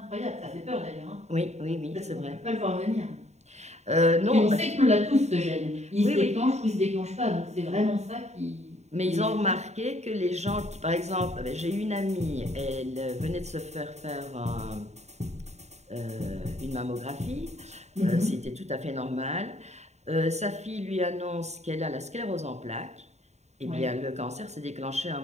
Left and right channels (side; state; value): left; late; 0.32 ms